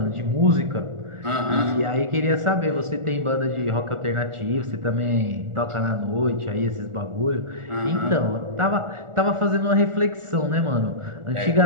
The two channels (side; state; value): left; late; 1.4 ms